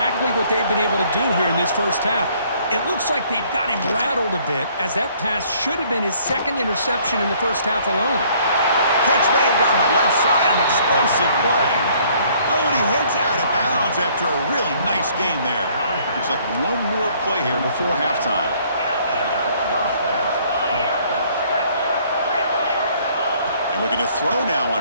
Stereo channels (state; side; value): inverted; both; correlation -0.61